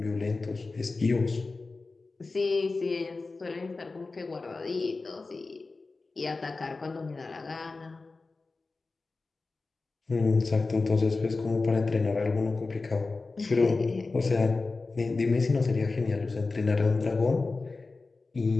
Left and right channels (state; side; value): quieter; right; 3.7 dB